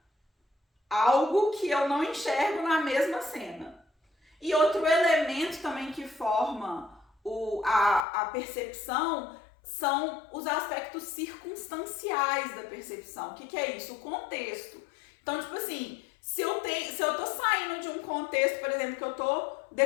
algo que eu não enxergo na mesma cena. E outro elemento também que forma a percepção são os aspectos circunstanciais da percepção. O que é isso? O contexto. Então, tipo assim, se eu tô saindo de um contexto, por exemplo, que eu tô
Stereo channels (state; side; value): drops out; right; at 8.1 s